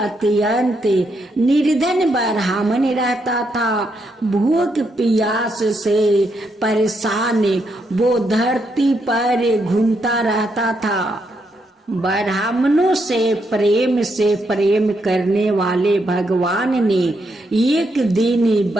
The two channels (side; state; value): both; normal; correlation 0.79